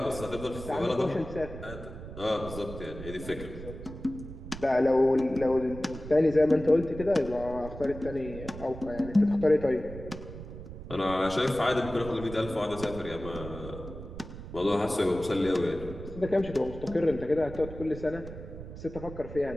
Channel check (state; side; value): noise; right; rumble, 12 dB below the sound